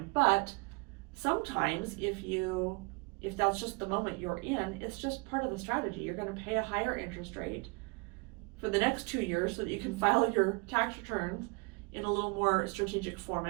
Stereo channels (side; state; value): left; quieter; 30.1 dB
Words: But sometimes if that's just the moment you're in, it's just part of the strategy. You're going to pay a higher interest rate for the next 2 years so that you can file your tax returns in a little more strategic